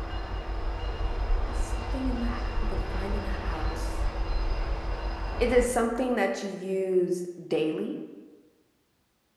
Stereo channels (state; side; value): identical; both; correlation 1.00